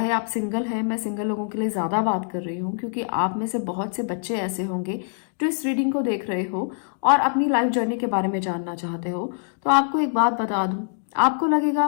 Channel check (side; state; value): right; silent; digital silence